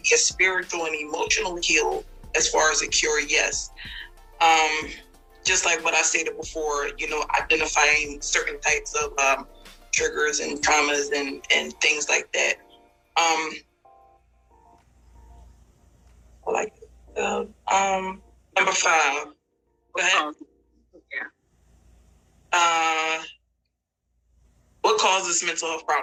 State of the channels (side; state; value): both; identical; correlation 1.00